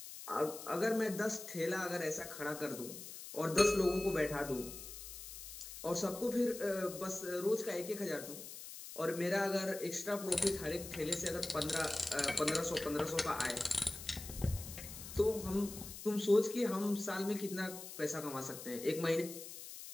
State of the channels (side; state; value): left; noise; hiss, 11 dB below the sound